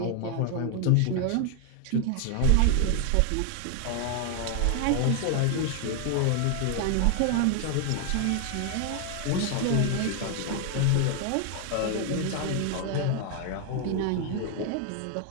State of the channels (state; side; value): different; both; correlation 0.00